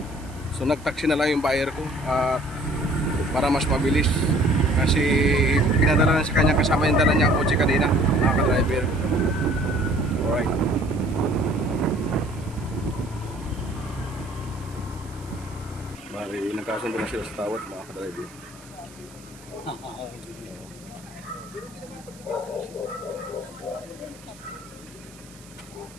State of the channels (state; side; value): noise; right; hiss, 23 dB below the sound